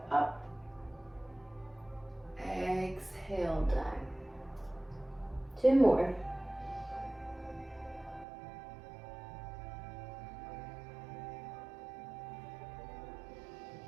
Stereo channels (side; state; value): left; drops out; at 8.2 s